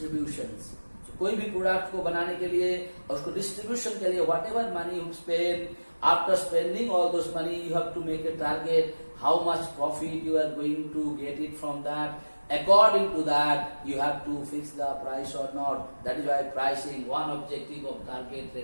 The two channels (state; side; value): inverted; both; correlation -1.00